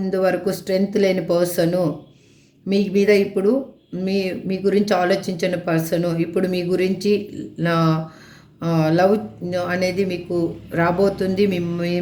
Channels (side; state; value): both; identical; correlation 1.00